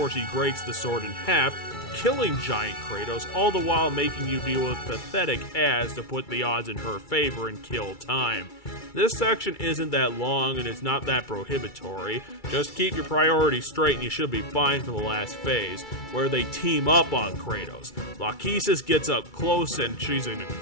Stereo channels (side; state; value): right; late; 2.3 ms